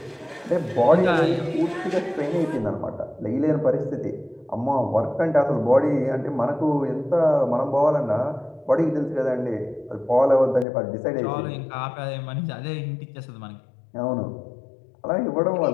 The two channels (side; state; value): right; drops out; at 10.7 s